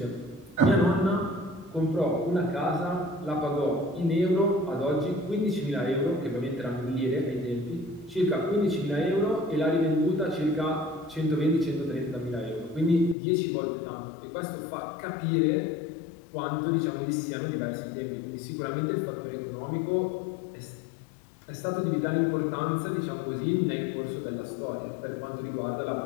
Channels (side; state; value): right; drops out; at 13.2 s